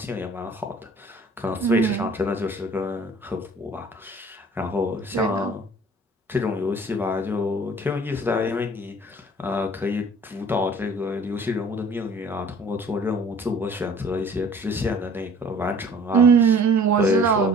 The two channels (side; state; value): both; normal; correlation 0.50